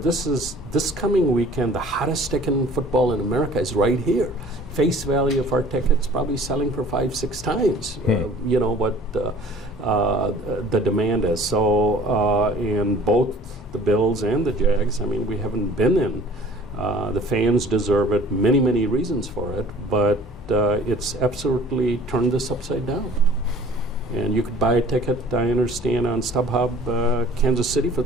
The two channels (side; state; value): both; normal; correlation 0.49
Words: coming weekend, the hottest ticket in football in America is right here. Face value of our tickets probably selling for 5-6 times, you know, what the demand is. So, and both the Bills and the Jags, I mean, we haven't been in. The fans deserve it, many reasons for it, but it's absolutely turned this upside down. And you could buy a ticket, I understand, on StubHub, Kansas City for